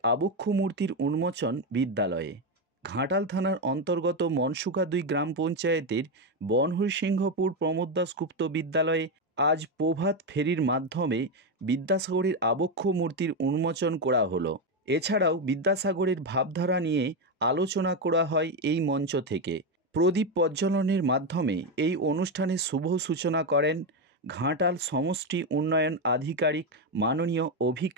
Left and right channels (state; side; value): normal; both; correlation 0.09